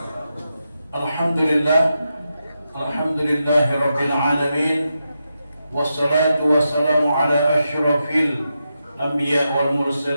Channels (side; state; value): both; inverted; correlation -0.87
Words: Alhamdulillahi rabbil alamin. Wassalatu wassalamu ala asyrafil anbiya wal